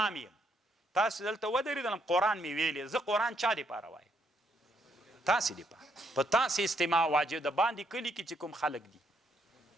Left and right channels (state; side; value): normal; both; correlation 0.73